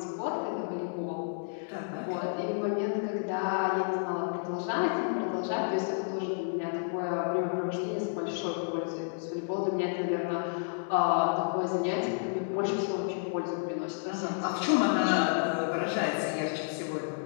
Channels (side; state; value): right; silent; digital silence